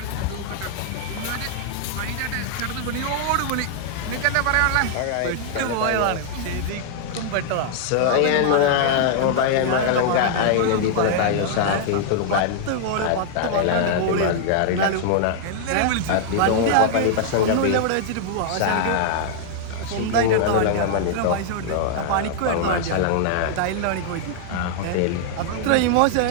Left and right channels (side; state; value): both; different; correlation -0.01